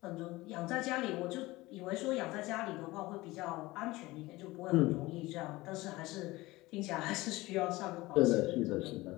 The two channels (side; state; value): right; quieter; 20.0 dB